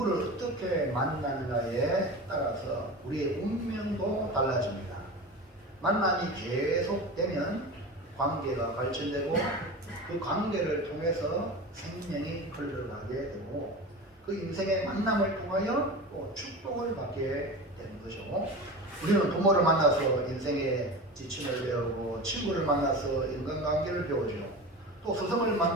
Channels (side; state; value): both; normal; correlation 0.30